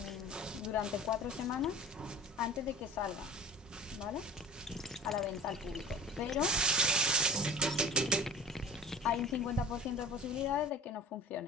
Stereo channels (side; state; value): both; normal; correlation 0.37